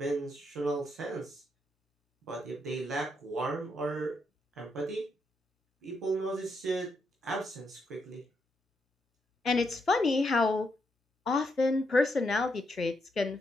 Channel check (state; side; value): normal; both; correlation 0.79